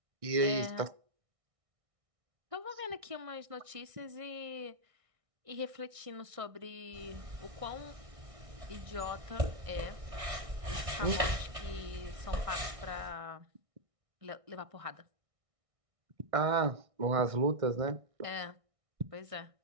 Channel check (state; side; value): late; left; 1.6 ms